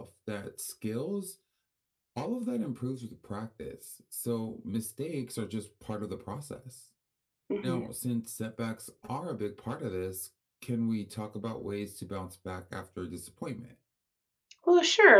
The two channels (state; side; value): identical; both; correlation 1.00